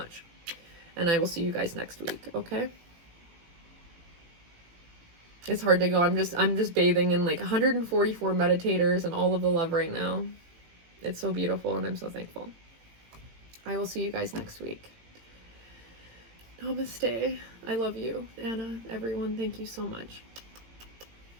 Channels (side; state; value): left; late; 18 ms